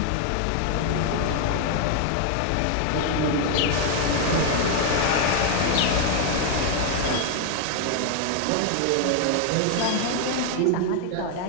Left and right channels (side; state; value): both; different; correlation 0.00